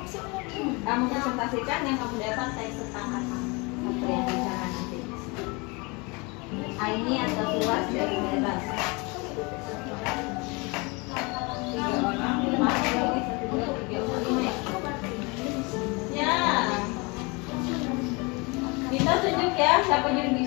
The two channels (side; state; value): right; quieter; 28.1 dB